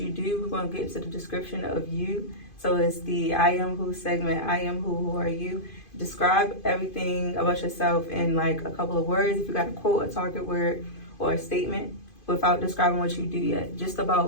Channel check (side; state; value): right; late; 2.5 ms